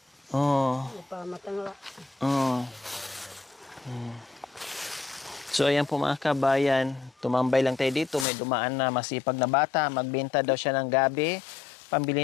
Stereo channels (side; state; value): right; drops out; at 8.2 s